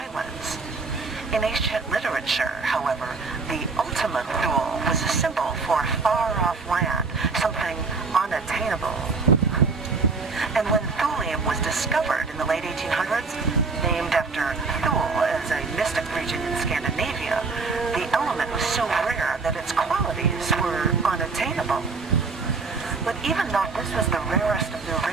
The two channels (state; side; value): quieter; left; 4.3 dB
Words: In ancient literature, however, the ultimate Thule was a symbol for far-off land, something unattainable. And when thulium was discovered in the late 1800s, named after Thule as a mystic region in Scandinavia, the element was so rare that its qualities were unattainable. But even though this was the rarest of the